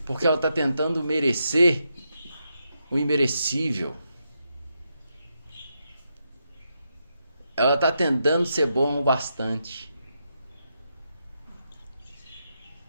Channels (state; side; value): inverted; both; correlation -0.83